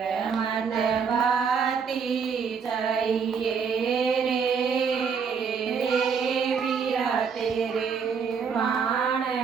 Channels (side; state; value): left; quieter; 6.2 dB